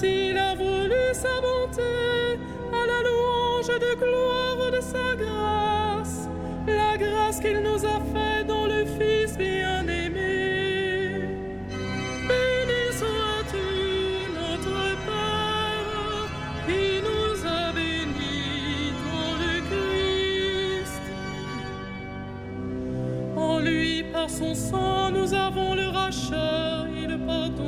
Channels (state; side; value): identical; both; correlation 1.00